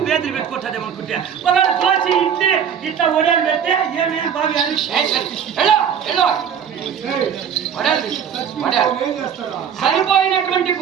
బేదలు పెట్టుకుంటుంది ఏమనుకుంటే ఒకవేళ దోశ ఇచ్చి ఇట్లా ఒడలు పెడితే ఏమేమి బాగా చనిపోయినటువంటి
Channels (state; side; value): quieter; left; 8.0 dB